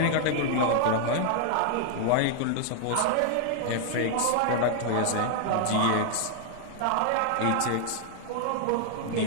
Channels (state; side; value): different; both; correlation 0.00